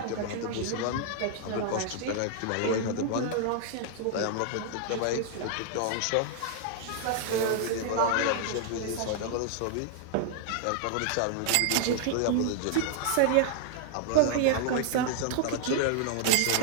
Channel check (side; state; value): both; different; correlation 0.00